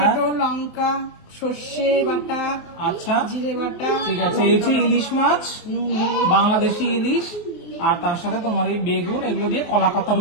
লঙ্কা, সর্ষে বাটা, আচ্ছা জিরে বাটা, ঠিক আছে, এই যে ইলিশ মাছ, নুন, হলুদ। বাংলাদেশি ইলিশ, আর তার সাথে তোমার এই বেগুন, এগুলো দিয়ে কলা পাতার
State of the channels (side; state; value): right; late; 24 ms